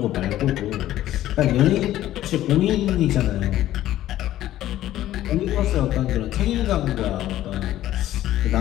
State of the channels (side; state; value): right; quieter; 13.7 dB